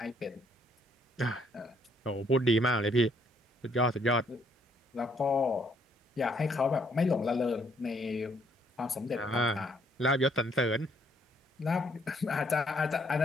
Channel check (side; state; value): both; normal; correlation 0.68